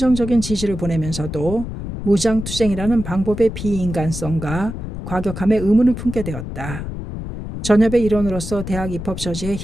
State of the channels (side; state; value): left; noise; rumble, 8 dB below the sound